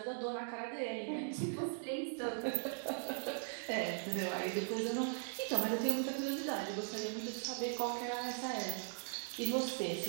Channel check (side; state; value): left; silent; digital silence